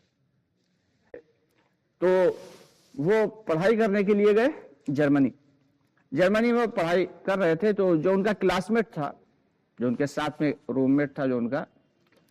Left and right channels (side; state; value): both; identical; correlation 1.00